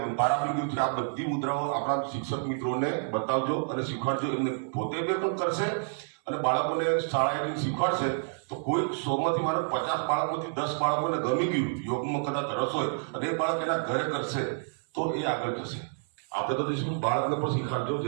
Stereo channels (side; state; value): left; silent; 59 dB below the other